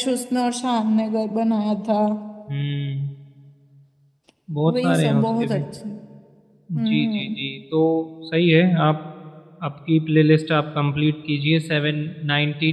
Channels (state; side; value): identical; both; correlation 1.00